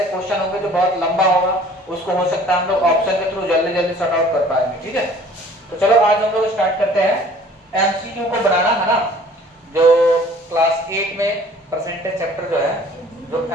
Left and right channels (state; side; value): normal; both; correlation 0.51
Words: क्वेश्चन होंगे जो बहुत लंबा होगा, उसको हो सकता है हम लोग ऑप्शन के थ्रू जल्दी जल्दी सॉर्ट आउट कर पाएंगे, ठीक है। तो चलो आज हम लोग स्टार्ट करते हैं एमसीक्यू को बनाना, है ना। जो क्लास 8 में परसेंटेज चैप्टर जो है, जो